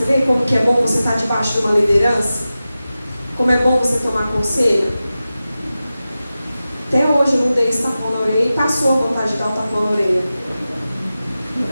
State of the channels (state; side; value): inverted; both; correlation -0.94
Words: vê como que é bom você estar debaixo de uma liderança? Como é bom você tomar conselho? Até hoje eu não dei esse tapão na orelha e passou a vontade de dar o tapão na orelha.